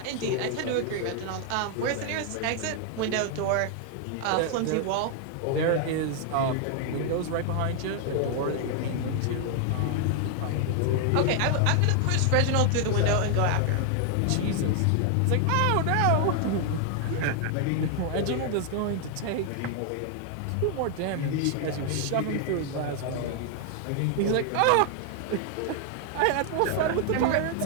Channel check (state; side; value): different; both; correlation 0.00